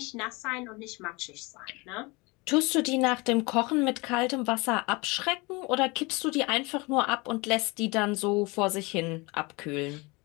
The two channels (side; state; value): right; quieter; 26.0 dB